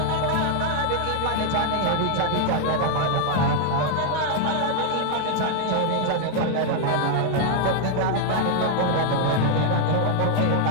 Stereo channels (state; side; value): different; both; correlation 0.00